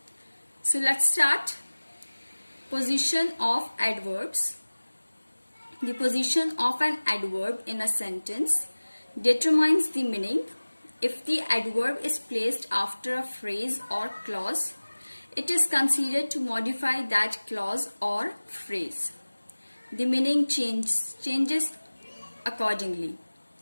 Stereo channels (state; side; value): inverted; both; correlation -1.00